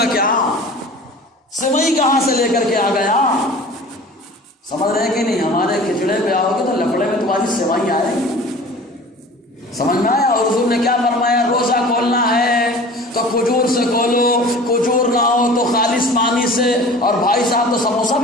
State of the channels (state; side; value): normal; both; correlation 0.42